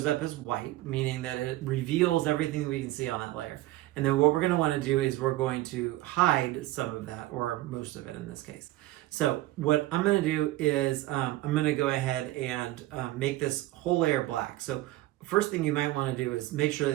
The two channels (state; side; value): quieter; left; 17.0 dB